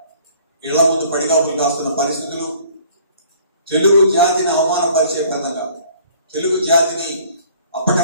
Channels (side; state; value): both; inverted; correlation -0.55